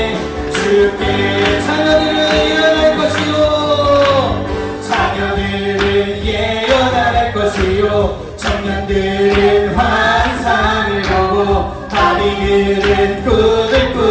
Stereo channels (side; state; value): both; identical; correlation 1.00